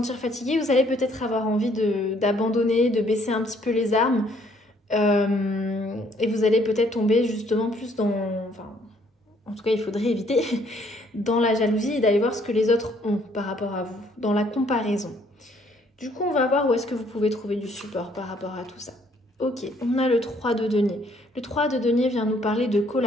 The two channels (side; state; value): both; normal; correlation 0.65